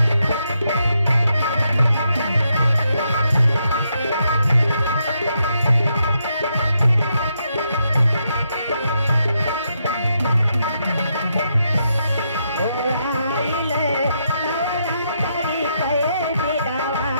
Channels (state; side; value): inverted; both; correlation -0.80